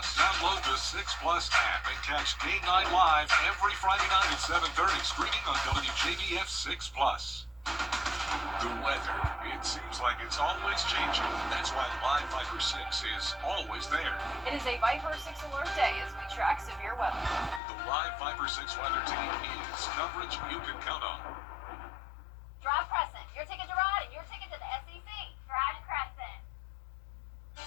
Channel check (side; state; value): right; drops out; at 17.6 s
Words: Download the 6 Plus app and catch Game 9 Live every Friday night at 7:30. Streaming on WJBF 6 Plus. The weather, it seems like it's always changing. That's why Live Viper 6 is always there. It is a Viper 6 alert day as we track severe weather. The Live Viper 6 weather team is coverage you can count on. Drive Crescent, your ticket to ride and your ticket to the SEC. Drive Crescent.